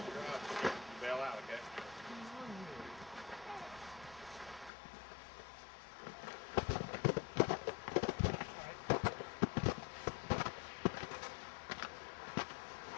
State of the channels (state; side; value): drops out; right; at 4.7 s